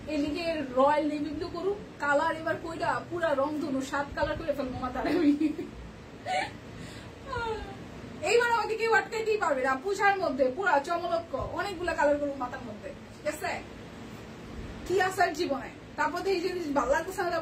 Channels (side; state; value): both; identical; correlation 1.00